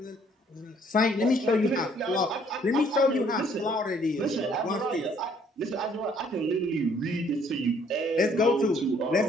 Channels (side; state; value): both; normal; correlation 0.63